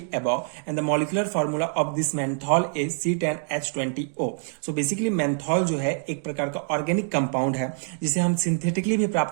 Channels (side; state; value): left; silent; 61 dB below the other